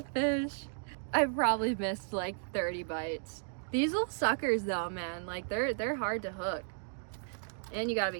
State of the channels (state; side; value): silent; left; digital silence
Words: fish. I probably missed like 30 bites. These little suckers though, man, like they're hard to hook. And you gotta